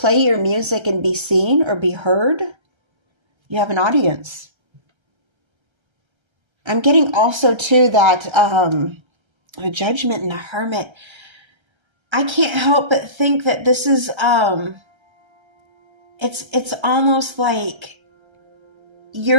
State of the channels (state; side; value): late; left; 1.3 ms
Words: your music and be seen or be heard. You have an audience. I'm getting also too that a Judgment and a Hermit. I can't help but think that this is it's almost like